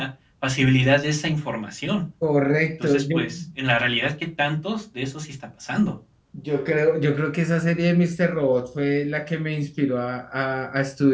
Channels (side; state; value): both; identical; correlation 1.00